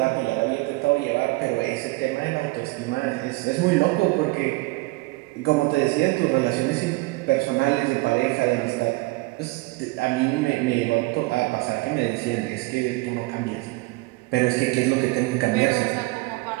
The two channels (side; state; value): left; quieter; 23.0 dB